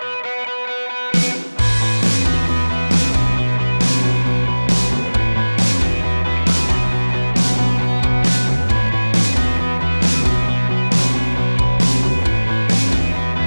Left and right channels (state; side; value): inverted; both; correlation -1.00